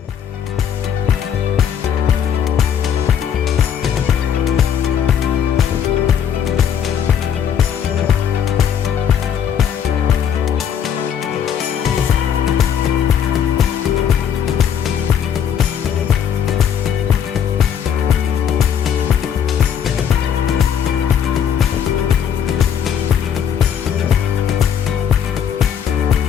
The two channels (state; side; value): quieter; right; 8.5 dB